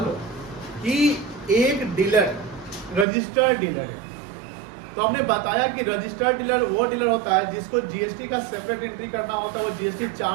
लो कि एक डीलर रजिस्टर्ड डीलर है, तो हमने बताया कि रजिस्टर्ड डीलर वो डीलर होता है जिसको जीएसटी का सेपरेट एंट्री करना होता है, वो जीएसटी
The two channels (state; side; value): drops out; left; at 3.1 s